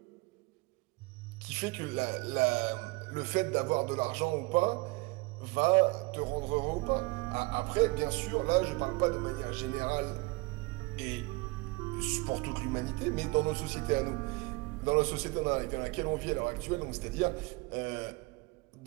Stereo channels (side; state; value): left; quieter; 24.7 dB